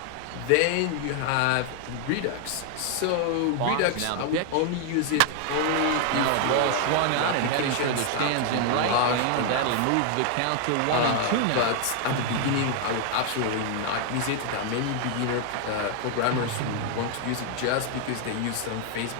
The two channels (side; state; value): both; different; correlation 0.00